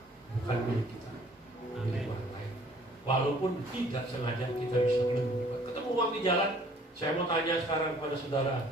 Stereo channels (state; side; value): normal; both; correlation 0.57